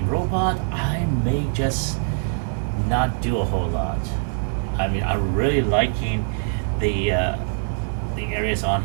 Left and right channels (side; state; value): left; silent; 63 dB below the other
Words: robot, I may just not do a whole lot. I mean, I'm really liking the areas on